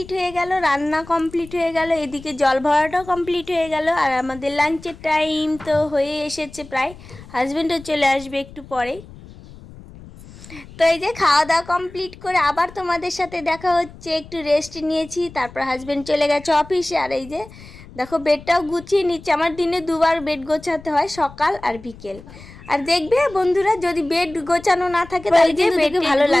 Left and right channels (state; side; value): noise; left; rumble, 19 dB below the sound